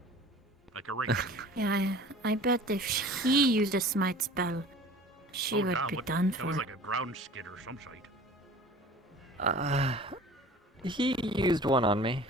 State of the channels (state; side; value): normal; both; correlation 0.43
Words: Like a ring. Yeah, I bet if he used a smite spell, she would damn, be what- done That for. was like a ground skid or some shit. He used one on me.